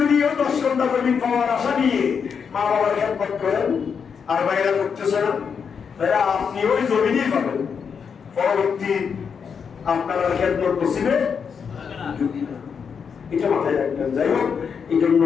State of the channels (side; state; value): right; quieter; 6.5 dB